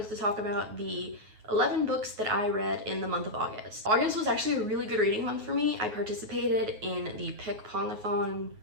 to talk about the 11 books that I read in the month of August. August was actually a really good reading month for me. I participated in the Pick Pongathon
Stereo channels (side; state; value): left; late; 9.4 ms